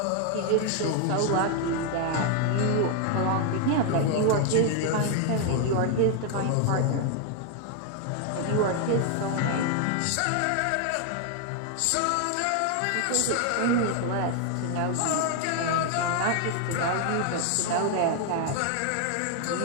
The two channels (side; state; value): both; different; correlation 0.00